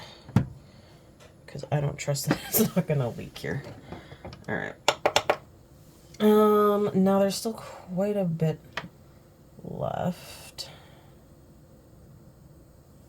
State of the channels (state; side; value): identical; both; correlation 1.00